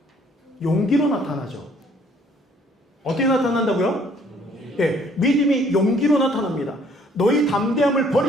용기로 나타나죠. 어떻게 나타난다고요? 예, 믿음이 용기로 나타납니다. 너희 담대함을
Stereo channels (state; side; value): normal; both; correlation 0.61